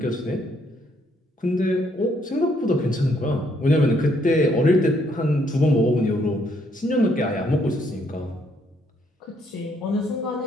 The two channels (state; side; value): normal; both; correlation 0.70